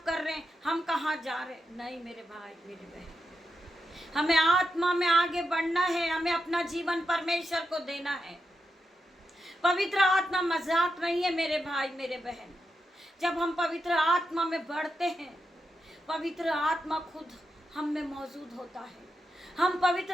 कर रहे हैं, हम कहाँ जा रहे हैं। नहीं मेरे भाई मेरे बहन, हमें आत्मा में आगे बढ़ना है। हमें अपना जीवन परमेश्वर को देना है। पवित्र आत्मा मजाक नहीं है मेरे भाई मेरे बहन। जब हम पवित्र आत्मा में बढ़ते हैं, पवित्र आत्मा खुद हम में मौजूद होता है। हम पवित्र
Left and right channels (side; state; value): both; normal; correlation 0.86